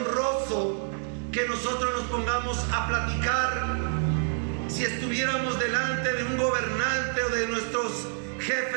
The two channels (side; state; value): left; silent; 56 dB below the other